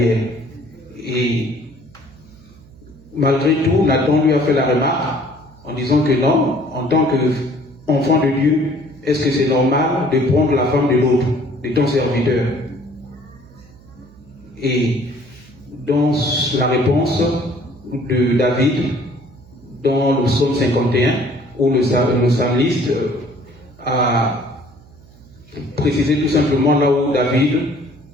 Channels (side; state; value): right; noise; hum, 24 dB below the sound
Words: Et malgré tout, Nathan lui a fait la remarque en disant que non, en tant qu'enfant de Dieu, est-ce que c'est normal de prendre la femme de l'autre, de ton serviteur? Et dans la réponse de David, dans le psaume 51, où le psalmiste a précisé tout simplement là où David